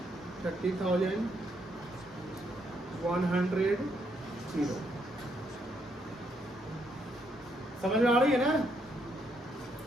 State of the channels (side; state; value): both; normal; correlation 0.75